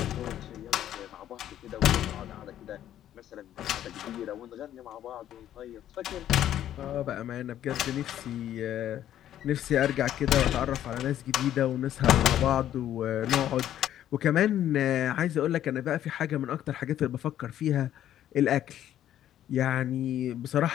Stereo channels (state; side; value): quieter; right; 11.6 dB